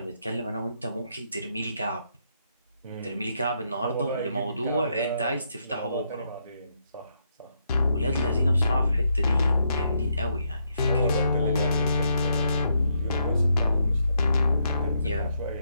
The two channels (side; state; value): both; inverted; correlation -0.78